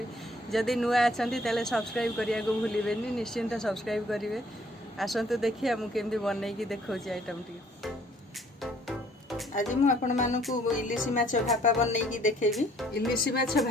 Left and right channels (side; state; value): both; normal; correlation 0.61